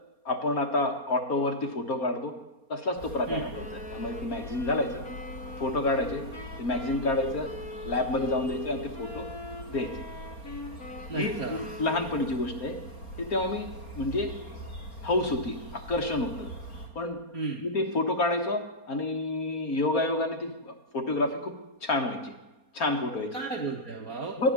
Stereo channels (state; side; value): late; right; 4.3 ms